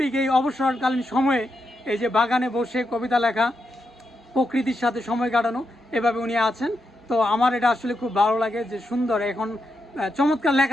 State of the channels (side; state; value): both; normal; correlation 0.84